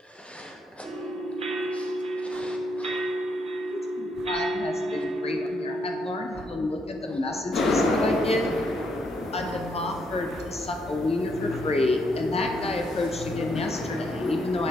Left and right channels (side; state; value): both; normal; correlation 0.76